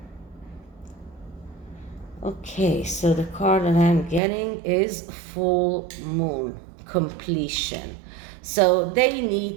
Okay, so the card that I'm getting is full moon, completion. So they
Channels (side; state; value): left; drops out; at 4.2 s